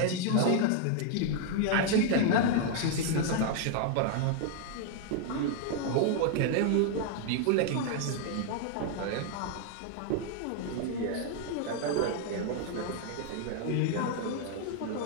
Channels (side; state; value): both; different; correlation 0.00